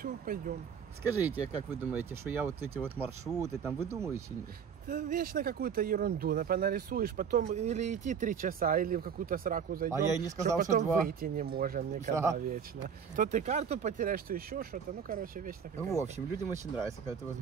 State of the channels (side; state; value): left; quieter; 7.2 dB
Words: пойдем. Скажите, как вы думаете, что я вот эти вот маршруты там выдумываю или нет? Да вечно какую-то ерунду нарисуешь, потом или идти 3 часа, или в какую-то сраку зайдем. А я и не сказал, что потом 2. выйти не можем никогда Да. вечно. То ты карту потеряешь, то еще что-то. Ну, короче, вечно Ну, какая-то. в общем, людям очень нравится, когда ты